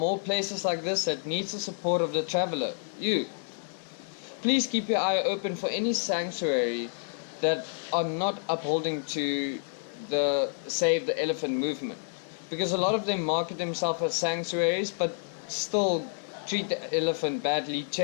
places like this that needs the support of the traveler, you. Please keep your eye open for any sanctuary that are not upholding to the Save the Elephant movement, because a lot of them market themselves as sanctuaries but still treat the elephant badly,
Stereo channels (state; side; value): silent; right; digital silence